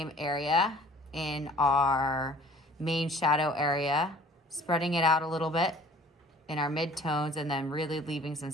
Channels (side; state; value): both; normal; correlation 0.51